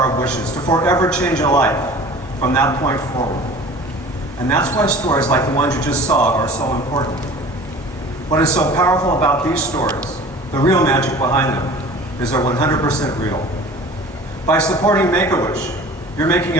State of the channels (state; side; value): normal; both; correlation 0.43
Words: of wishes to forever change a life from that point forward. And that's why stories like the ones you just saw are so important. What is so powerful about these stories, the real magic behind them, is they're 100% real. By supporting Make-A-Wish, you're making